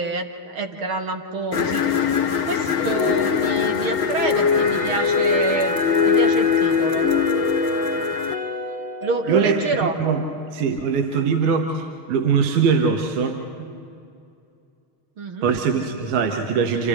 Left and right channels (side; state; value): left; late; 6.4 ms